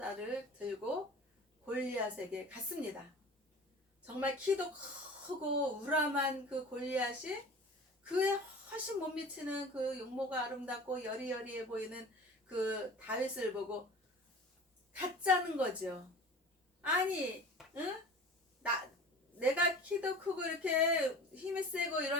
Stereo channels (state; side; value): normal; both; correlation 0.39